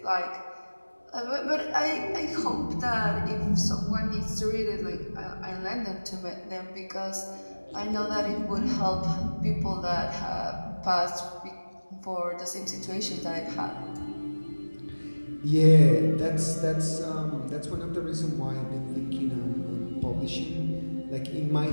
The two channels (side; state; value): both; inverted; correlation -1.00